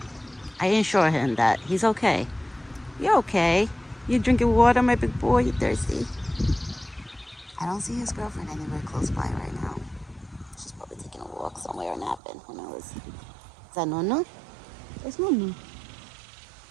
I assure him that he's okay. You're okay. You drinking water, my big boy? You thirsty? I don't see his girlfriend anywhere close by right now. She's probably taking a walk somewhere or napping. Who knows? Is that Nunu? There's Nunu.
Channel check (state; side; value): drops out; left; at 12.2 s